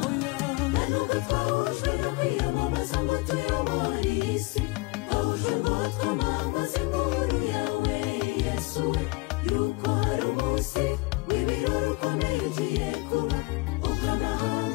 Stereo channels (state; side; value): quieter; right; 24.7 dB